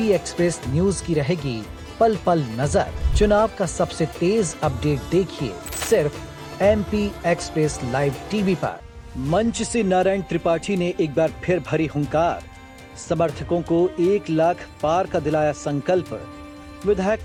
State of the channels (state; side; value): identical; both; correlation 1.00